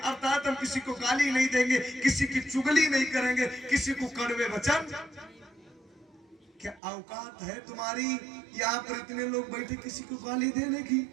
हम किसी को गाली नहीं देंगे, किसी की चुगली नहीं करेंगे, किसी को कड़वे वचन। क्या औकात है तुम्हारी यहाँ पर इतने लोग बैठे किसी को गाली देने की?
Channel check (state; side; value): drops out; left; at 6.8 s